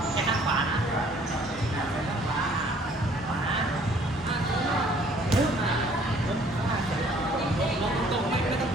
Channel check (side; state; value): both; normal; correlation 0.58